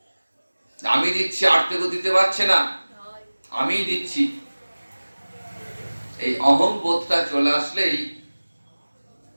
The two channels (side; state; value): both; inverted; correlation -1.00